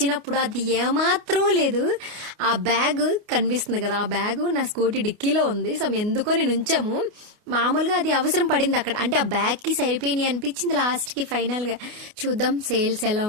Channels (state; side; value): late; left; 29 ms